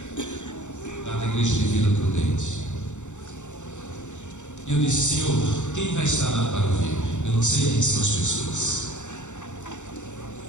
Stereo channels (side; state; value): right; late; 0.84 ms